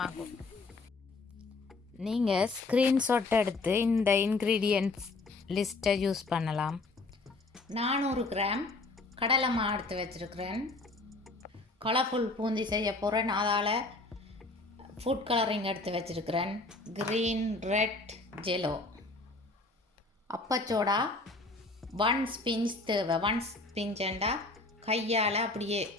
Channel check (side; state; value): right; quieter; 3.4 dB